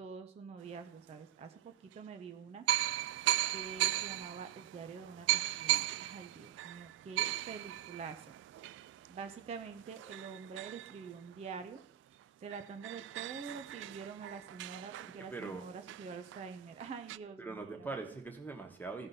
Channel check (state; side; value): quieter; left; 11.4 dB